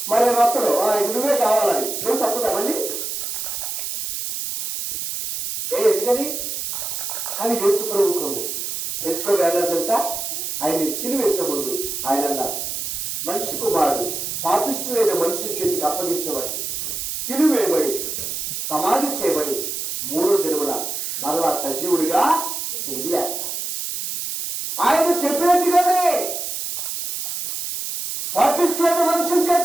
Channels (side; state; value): right; noise; hiss, 4 dB below the sound